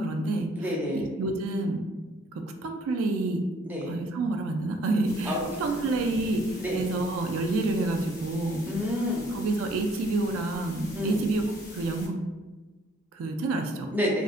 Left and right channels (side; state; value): both; normal; correlation 0.62